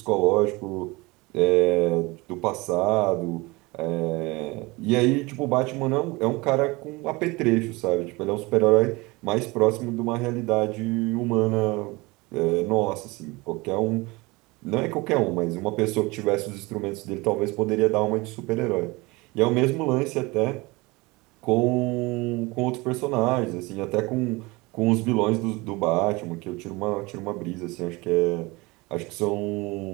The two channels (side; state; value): left; quieter; 23.8 dB